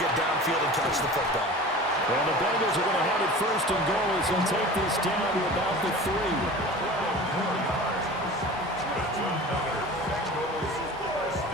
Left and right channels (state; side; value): normal; both; correlation 0.38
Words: downfield and catch the football. Well, the Bengals are going to have it first and goal as they'll take this down to about the 3.